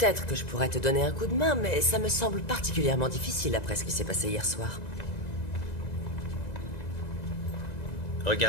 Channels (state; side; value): late; right; 2.0 ms